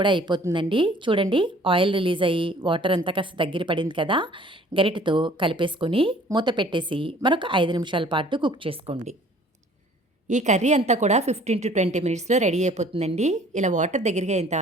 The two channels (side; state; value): both; normal; correlation 0.53